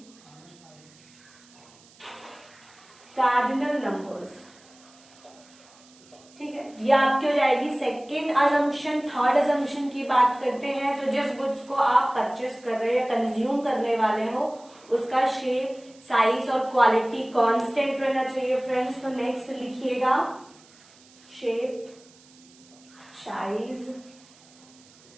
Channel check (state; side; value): noise; right; hiss, 26 dB below the sound